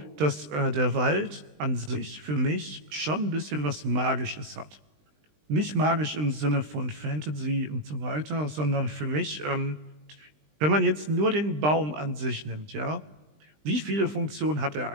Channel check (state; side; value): late; left; 20 ms